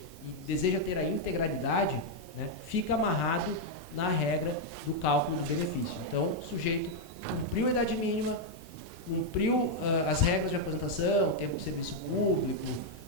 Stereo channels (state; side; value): normal; both; correlation -0.01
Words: e deseja ter a integralidade, né, fica amarrado na regra do cálculo do benefício. Então, o sujeito cumpriu a idade mínima, cumpriu as regras de aposentação, tempo de serviço público,